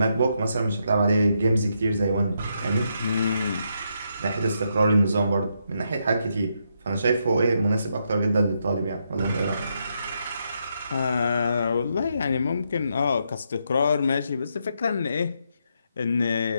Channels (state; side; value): inverted; both; correlation -0.79